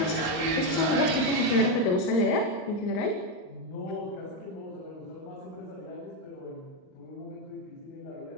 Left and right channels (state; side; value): late; right; 39 ms